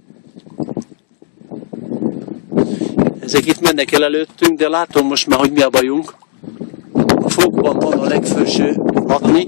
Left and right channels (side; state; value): right; silent; digital silence